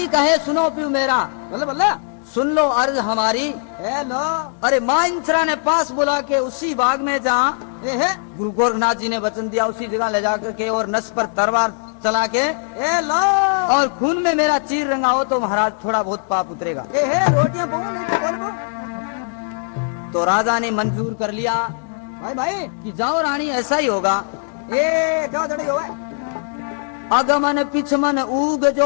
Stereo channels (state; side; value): silent; right; 66 dB below the other